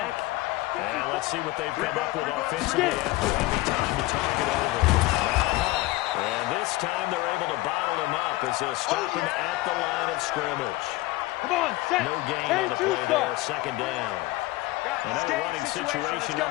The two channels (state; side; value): quieter; right; 19.2 dB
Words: And let's see what they've come up with offensively after having time to talk it over. And this time they're able to bottle him up as they'll stop him at the line of scrimmage. Come on, set. No gain on the play there, 2nd down. Another running situation on